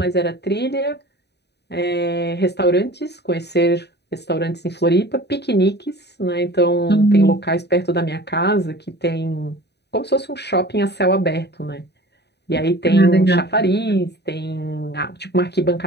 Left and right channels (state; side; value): late; right; 0.49 ms